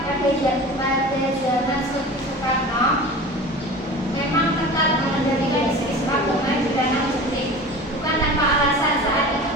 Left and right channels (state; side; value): normal; both; correlation 0.36